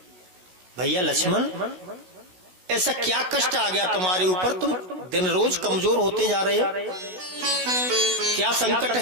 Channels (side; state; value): left; late; 16 ms